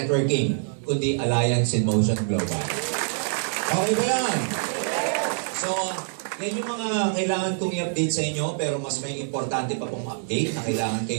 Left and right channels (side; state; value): left; silent; 62 dB below the other